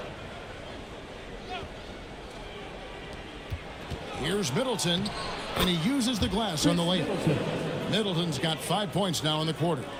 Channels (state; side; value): identical; both; correlation 1.00